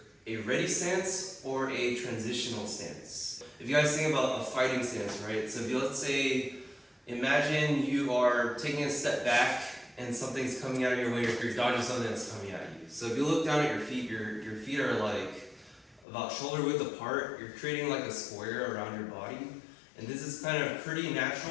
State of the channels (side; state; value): right; drops out; at 16.1 s